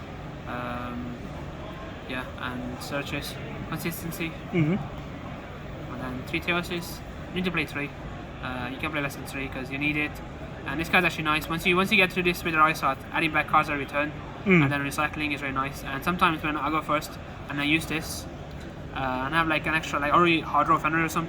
Yeah, and searches consistency. And then 3 Theosis. You need to play 3. You can play less than 3 because you need it. And this card's actually nice. Once you get through this with the Rice Art, adding back cards at return, and then recycling is very nice. And sometimes when I go first and I use this, and I have like an extra, like already hard draw Fenrir or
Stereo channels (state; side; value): identical; both; correlation 1.00